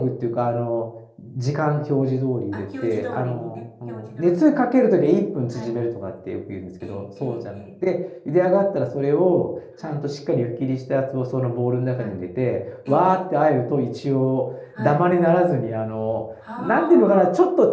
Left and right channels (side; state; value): both; identical; correlation 1.00